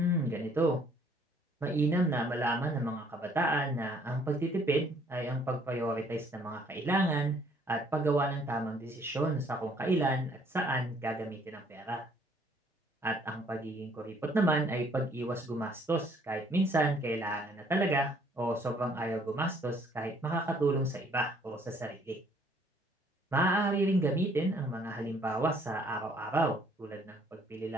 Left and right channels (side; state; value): both; normal; correlation 0.62